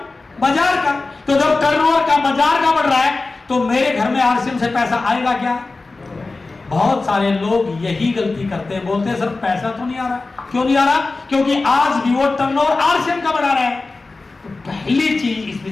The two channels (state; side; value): quieter; right; 3.6 dB